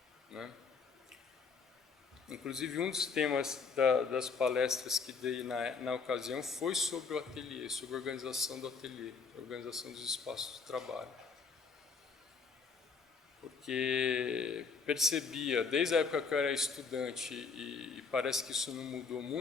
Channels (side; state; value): right; quieter; 5.1 dB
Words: né? Inclusive, um dos temas das palestras que dei na ocasião foi sobre o ateliê, sobre a organização do ateliê, a organização dos espaços de trabalho. Porque percebia, desde a época que eu era estudante, e parece que isso não mudou